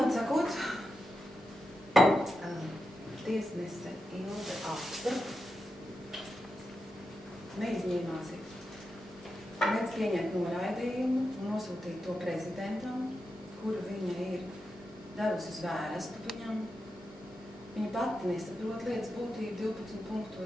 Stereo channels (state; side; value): normal; both; correlation 0.88